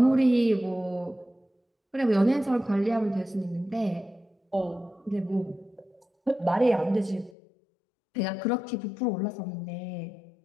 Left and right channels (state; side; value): drops out; right; at 7.4 s